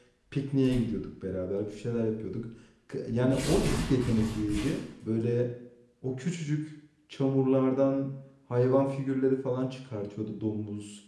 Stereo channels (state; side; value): identical; both; correlation 1.00